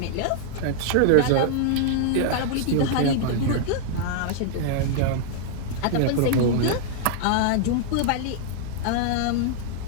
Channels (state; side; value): different; both; correlation -0.01